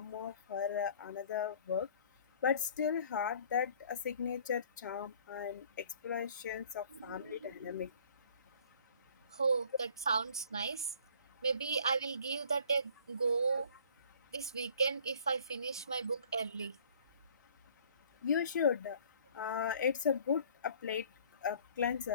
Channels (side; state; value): both; inverted; correlation -0.54